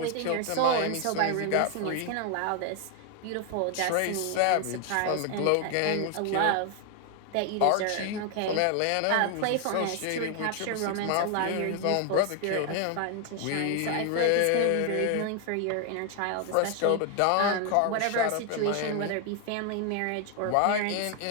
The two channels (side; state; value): both; different; correlation 0.01